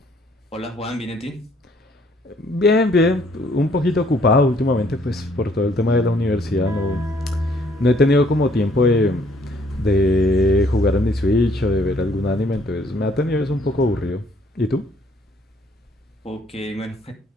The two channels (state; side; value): normal; both; correlation 0.64